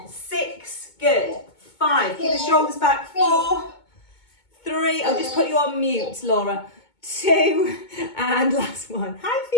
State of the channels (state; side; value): late; right; 2.2 ms